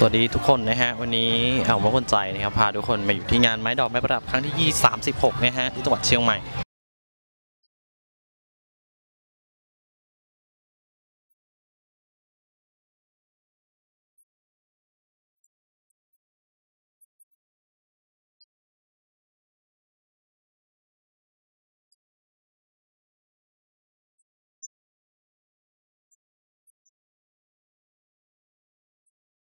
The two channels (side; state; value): both; inverted; correlation -1.00